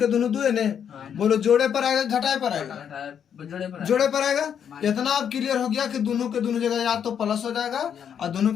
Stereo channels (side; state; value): right; quieter; 8.3 dB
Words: दोनों 2 है ने। बोलो जोड़े पर आएगा घटाए पर आएगा, जोड़े पर आएगा। इतना अब क्लियर हो गया कि दोनों के दोनों जगह या तो प्लस हो जाएगा और दोनों